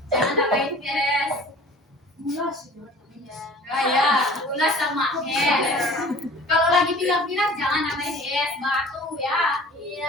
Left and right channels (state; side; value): normal; both; correlation 0.46